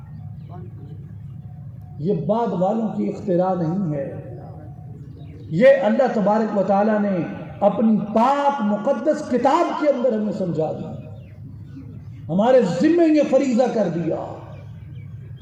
یہ بعد والوں کی اختراع نہیں ہے، یہ اللہ تبارک و تعالی نے اپنی پاک مقدس کتاب کے اندر ہمیں سمجھا دی، ہمارے ذمے یہ فریضہ کر دیا۔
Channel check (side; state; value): both; identical; correlation 1.00